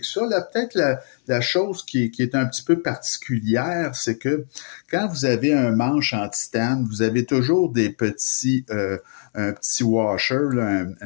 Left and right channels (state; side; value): silent; right; 64 dB below the other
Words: ça. Là, peut-être la chose qui est un petit peu particulière, c'est que quand vous avez un manche en titane, vous avez toujours un petit washer, là,